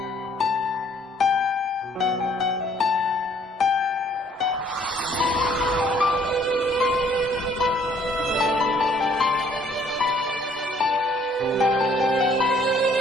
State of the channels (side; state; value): both; normal; correlation 0.62